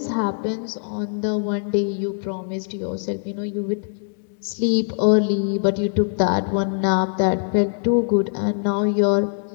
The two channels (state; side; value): silent; right; digital silence